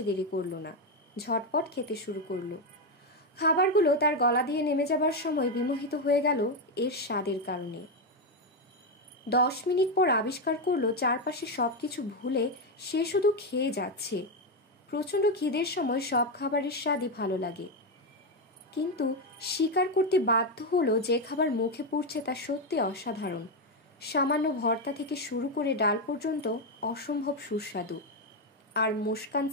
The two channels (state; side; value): normal; both; correlation 0.07